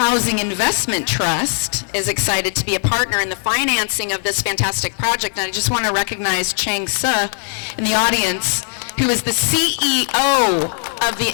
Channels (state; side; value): silent; right; 65 dB below the other